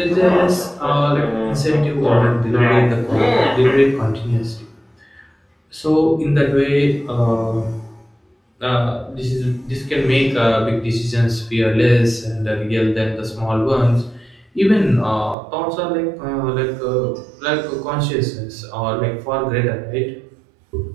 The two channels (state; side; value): drops out; left; at 15.4 s